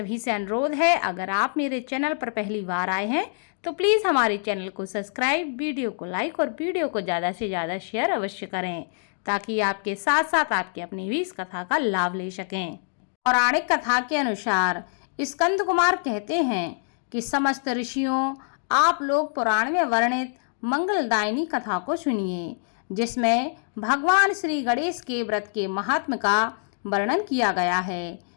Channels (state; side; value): silent; right; digital silence